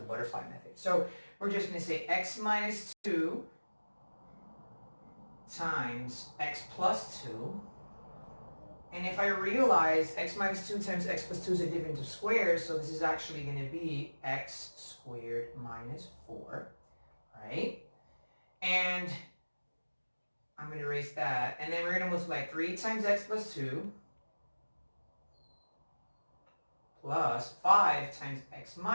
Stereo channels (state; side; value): inverted; both; correlation -1.00